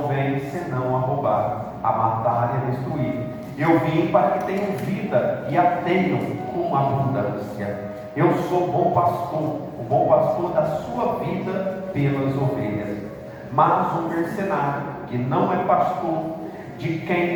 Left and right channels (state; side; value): identical; both; correlation 1.00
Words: vem senão a roubar, a matar e a destruir. Eu vim para que tenham vida e a tenham com abundância. Eu sou o bom pastor da sua vida pelas ovelhas. Mas um mercenário, que não é pastor, de